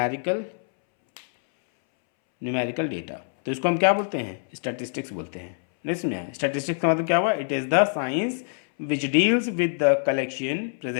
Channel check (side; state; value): right; silent; 62 dB below the other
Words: numerical data. तो इसको हम क्या बोलते हैं, स्टैटिस्टिक्स बोलते हैं। नहीं समझा, स्टैटिस्टिक्स का मतलब क्या हुआ, it is the science which deals with the collection,